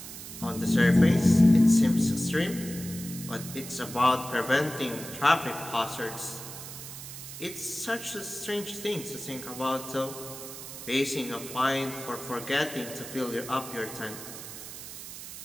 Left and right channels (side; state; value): right; noise; hiss, 11 dB below the sound